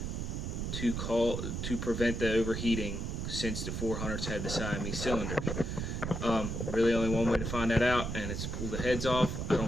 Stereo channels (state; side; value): noise; right; rumble, 3 dB below the sound